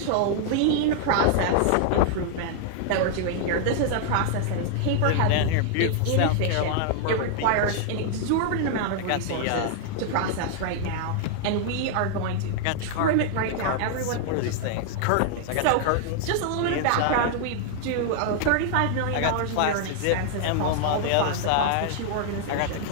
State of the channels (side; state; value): both; different; correlation 0.00